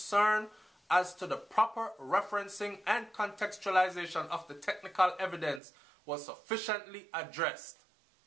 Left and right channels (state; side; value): drops out; left; at 5.6 s